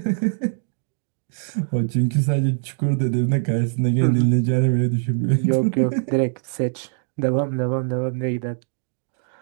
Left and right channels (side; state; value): left; silent; digital silence